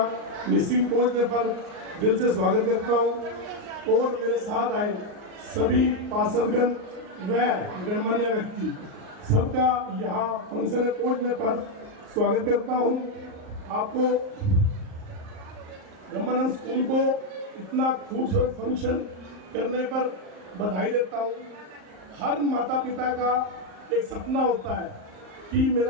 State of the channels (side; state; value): left; late; 38 ms